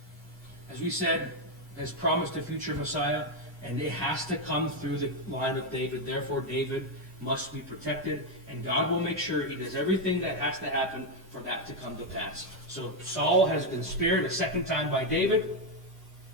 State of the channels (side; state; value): both; normal; correlation 0.04